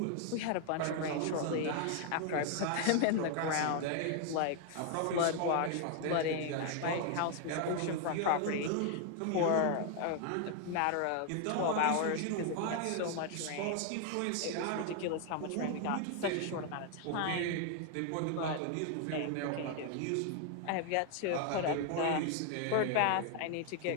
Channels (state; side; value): different; both; correlation 0.00